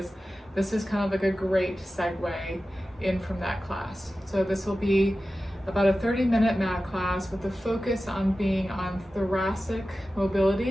this is kind of like a great segue in from that class. So this will be about a 30-minute mat class with a focus on being on thoracic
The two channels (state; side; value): normal; both; correlation 0.94